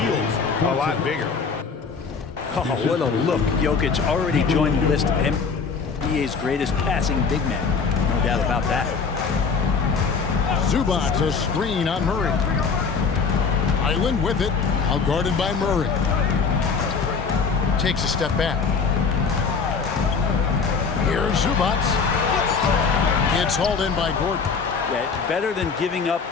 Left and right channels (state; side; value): quieter; right; 5.3 dB